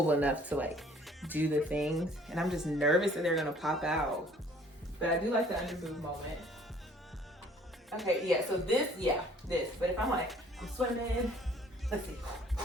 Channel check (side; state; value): both; normal; correlation 0.56